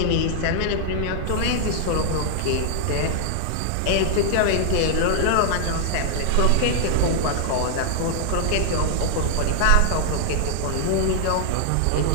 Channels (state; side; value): different; both; correlation -0.01